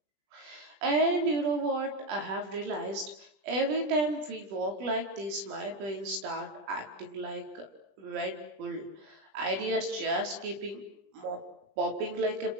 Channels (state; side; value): late; left; 20 ms